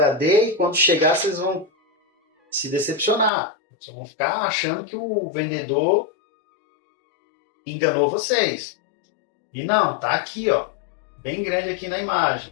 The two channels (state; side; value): drops out; right; at 3.3 s